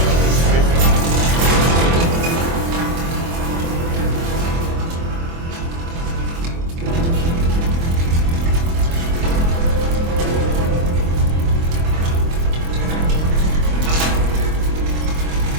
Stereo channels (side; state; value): left; late; 24 ms